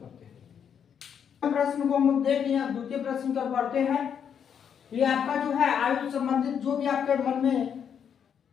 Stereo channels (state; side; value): quieter; right; 7.9 dB